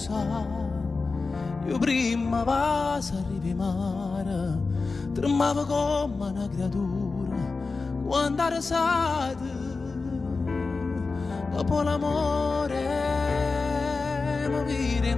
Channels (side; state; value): right; quieter; 4.1 dB